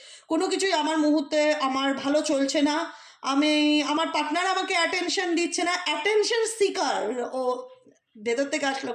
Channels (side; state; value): both; identical; correlation 1.00